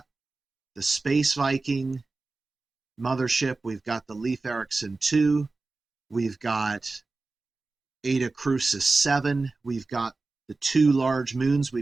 the Space Viking mothership. We've got the Leif Erikson 2. We've got Eta Crucis 7. We've got the 2 large moons.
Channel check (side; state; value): left; quieter; 3.6 dB